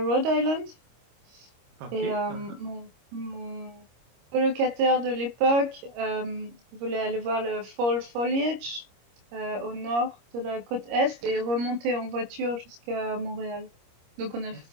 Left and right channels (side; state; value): left; late; 25 ms